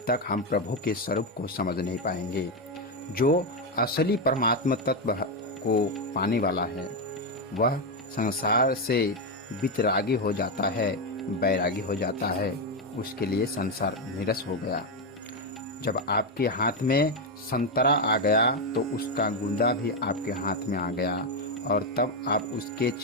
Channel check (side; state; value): both; normal; correlation 0.06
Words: तक हम प्रभु के स्वरूप को समझ नहीं पाएंगे। जो असली परमात्मा तत्व को पाने वाला है वह संसार से वितरागी हो जाता है, बैरागी हो जाता है। उसके लिए संसार निरस हो गया। जब आपके हाथ में संतरा आ गया तो उसका गूंदा भी आपके हाथ में आ गया और तब आप उसके